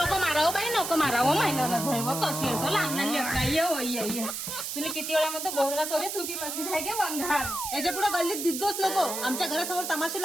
मारावं बाई नको मारावं महिना कशी असं लहान ये तुला किती वेळा म्हणतो बोलला तोरे चुकी बसली आहे गे वंघार. याच्या पुढे गल्लीत दिसतोच नको. आमच्या घरासमोर तमाशे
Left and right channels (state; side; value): noise; right; hiss, 5 dB below the sound